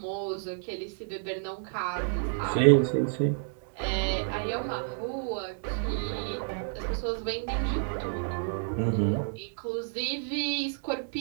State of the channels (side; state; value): left; silent; digital silence